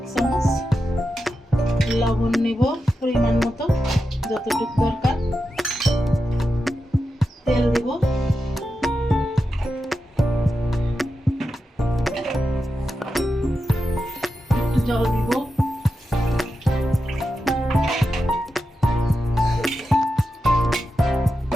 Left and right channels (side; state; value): both; normal; correlation 0.89